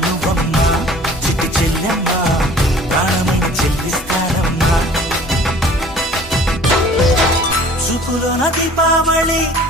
నువ్వమ్మా, చిట్టి చెల్లెమ్మా, ప్రాణమైన చెల్లిస్తానమ్మా. చూపులోన దీపావళి,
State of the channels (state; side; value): normal; both; correlation 0.49